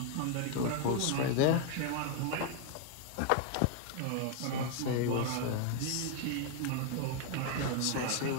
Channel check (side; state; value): both; different; correlation 0.00